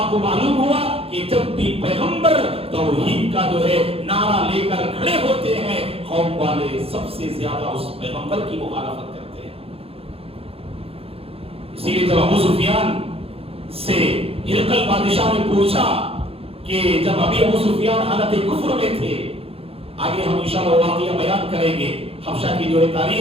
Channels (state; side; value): late; left; 0.28 ms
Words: کو معلوم ہوا کہ جب بھی پیغمبر توحید کا جو ہے نعرہ لے کر کھڑے ہوتے ہیں، قوم والے سب سے زیادہ اس پیغمبر کی مخالفت کرتے ہیں۔ اسی لیے جب ابو سفیان سے ہرقل بادشاہ نے پوچھا کہ جب ابھی ابو سفیان حالت کفر میں تھے، آگے ہم انشاءاللہ واقعہ بیان کریں گے حبشہ کی جو ہے